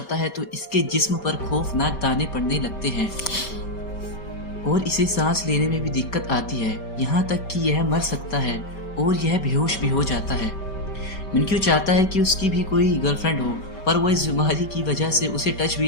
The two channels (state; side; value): late; right; 5.2 ms